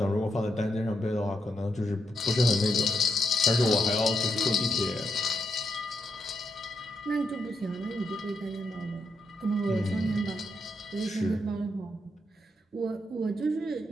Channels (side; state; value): both; normal; correlation 0.81